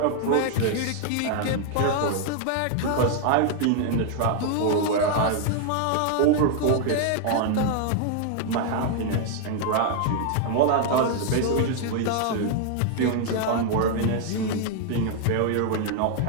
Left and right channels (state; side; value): different; both; correlation 0.00